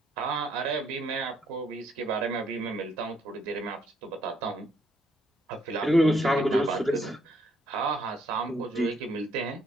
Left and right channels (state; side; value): normal; both; correlation 0.70